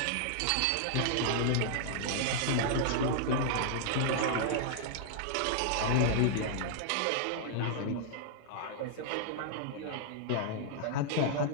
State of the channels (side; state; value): both; different; correlation -0.01